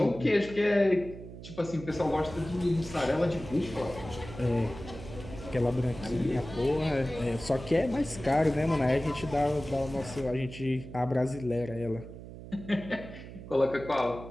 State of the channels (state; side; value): noise; right; hum, 13 dB below the sound